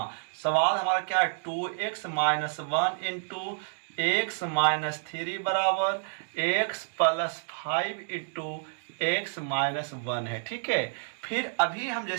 सवाल हमारा क्या है, 2x minus 1 into x minus 3 बराबर x plus 5 into x minus 1 है। ठीक है, फिर अभी हम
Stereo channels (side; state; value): left; silent; digital silence